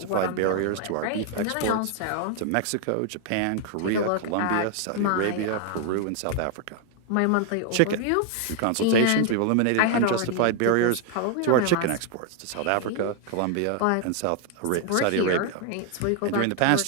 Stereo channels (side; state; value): both; different; correlation 0.00